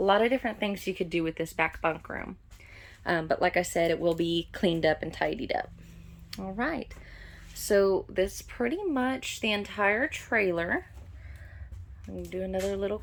lot of different things you could do with this back bunk room. But like I said, it will be cleaned up and tidied up. All right. So that's pretty much the entire trailer. I'm going to do another little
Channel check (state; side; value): identical; both; correlation 1.00